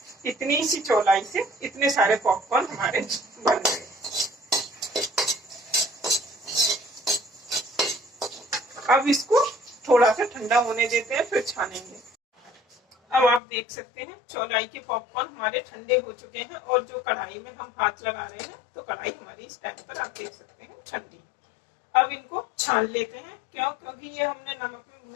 सी चौलाई से इतने सारे पॉपकॉर्न हमारे बन गए। अब इसको थोड़ा सा ठंडा होने देते हैं फिर छानेंगे। अब आप देख सकते हैं चौलाई के पॉपकॉर्न हमारे ठंडे हो चुके हैं और जो कढ़ाई में हम हाथ लगा रहे हैं तो कढ़ाई हमारी इस टाइम पर आप देख सकते हैं ठंडी। अब इनको छान लेते हैं। क्यों? क्योंकि ये हमने नमक में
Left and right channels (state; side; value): drops out; right; at 13.4 s